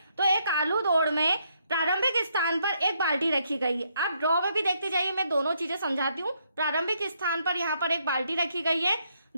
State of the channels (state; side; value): inverted; both; correlation -0.74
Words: तो एक आलू दौड़ में प्रारंभिक स्थान पर एक बाल्टी रखी गई है। आप ड्रॉ में भी देखते जाइए, मैं दोनों चीजें समझाती हूँ। प्रारंभिक स्थान पर यहाँ पर एक बाल्टी रखी गई है